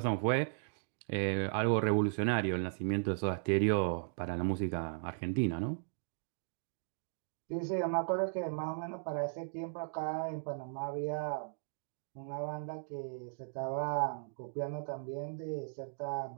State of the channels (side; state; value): left; silent; digital silence